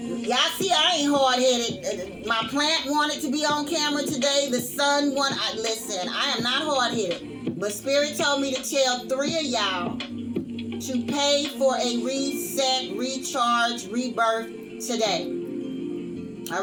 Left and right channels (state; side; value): identical; both; correlation 1.00